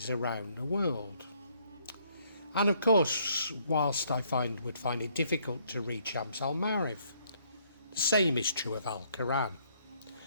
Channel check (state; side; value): inverted; both; correlation -0.68